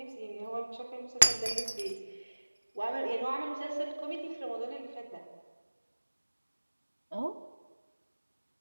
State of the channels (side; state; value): both; inverted; correlation -1.00